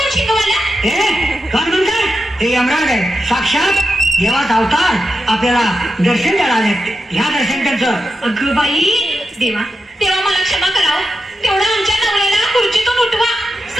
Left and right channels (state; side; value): normal; both; correlation 0.88